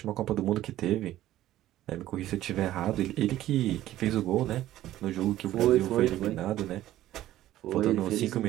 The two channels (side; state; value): left; quieter; 14.0 dB